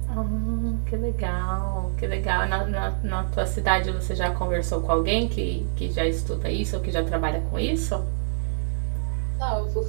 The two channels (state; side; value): silent; left; 56 dB below the other